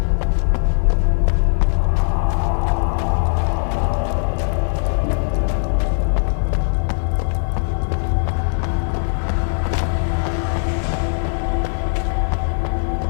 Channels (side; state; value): right; silent; 66 dB below the other